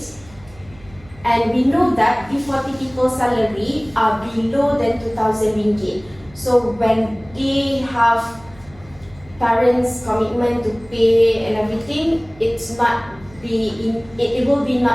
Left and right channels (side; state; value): right; noise; hum, 24 dB below the sound